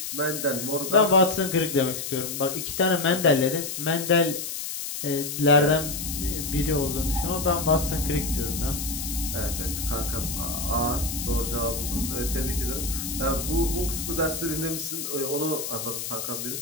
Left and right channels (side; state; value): left; noise; hiss, 5 dB below the sound